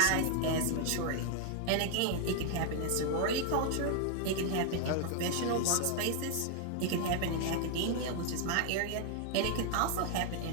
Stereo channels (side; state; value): both; different; correlation 0.00